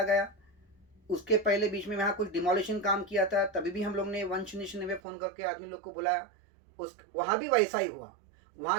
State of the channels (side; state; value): left; drops out; at 5.0 s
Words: गया, उसके पहले बीच में वहाँ कुछ डिमोलिशन काम किया था, तभी भी हम लोग ने 199 फ़ोन करके आदमी लोग को बुलाया, वहाँ भी वैसा ही हुआ।